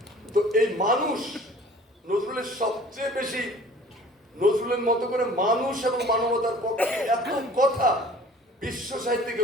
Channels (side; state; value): both; normal; correlation 0.48